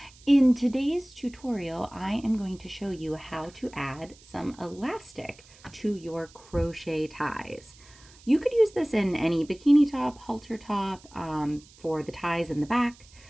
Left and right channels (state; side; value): noise; right; hiss, 24 dB below the sound